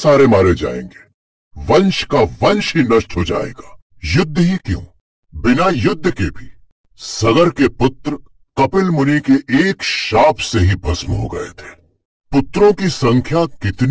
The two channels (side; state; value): both; identical; correlation 1.00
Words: मारे जाएंगे, वंश का वंश ही नष्ट हो जाएगा। युद्ध ही क्यों, बिना युद्ध के भी सगर के पुत्र कपिल मुनि के एक शाप से ही भस्म हो गए थे। पुत्रों की संख्या